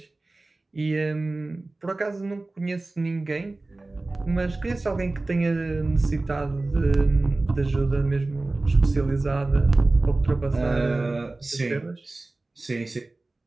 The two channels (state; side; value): quieter; left; 3.1 dB